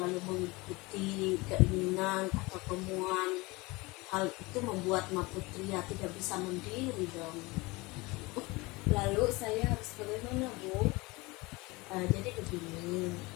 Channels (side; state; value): right; quieter; 23.5 dB